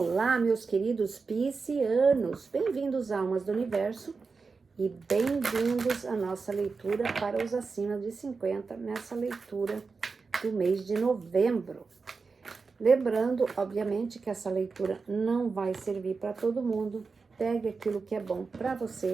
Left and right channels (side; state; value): left; quieter; 4.6 dB